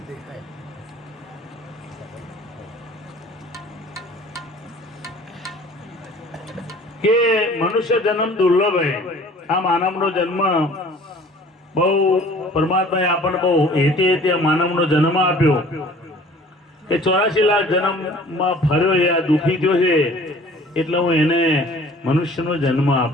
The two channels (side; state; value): both; normal; correlation 0.50